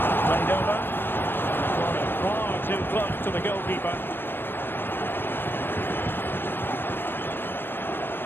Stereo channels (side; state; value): right; late; 0.098 ms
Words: Played over. Far too close to the goalkeeper.